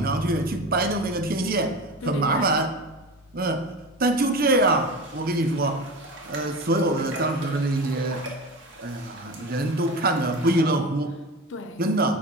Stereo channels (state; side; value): normal; both; correlation 0.29